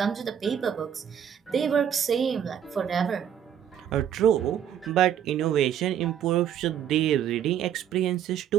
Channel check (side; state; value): left; quieter; 9.5 dB